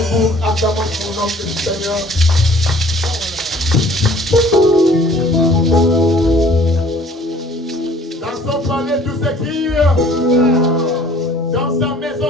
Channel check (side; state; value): both; normal; correlation 0.53